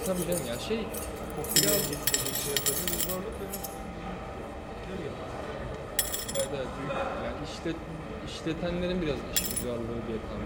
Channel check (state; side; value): identical; both; correlation 1.00